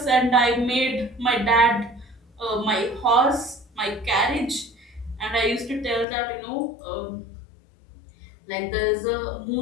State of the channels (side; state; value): right; drops out; at 6.1 s